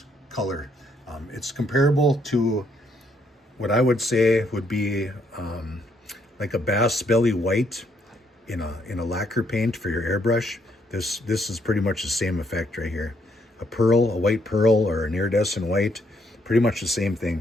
color. It's comparable to what I would say would be like a bass belly white in a lacquer paint for your airbrush. This is pretty much the same effect right here. A pearl, a white pearl, or an iridescent white, pretty much the same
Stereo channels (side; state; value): both; normal; correlation 0.72